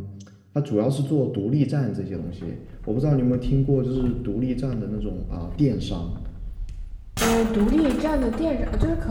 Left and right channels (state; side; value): identical; both; correlation 1.00